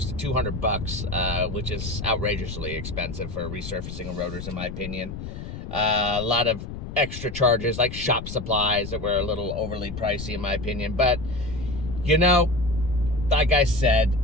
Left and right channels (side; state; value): left; noise; rumble, 9 dB below the sound